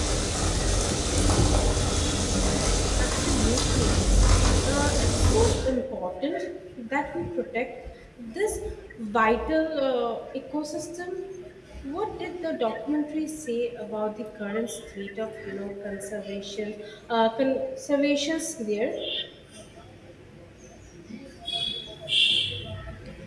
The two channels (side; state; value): both; identical; correlation 1.00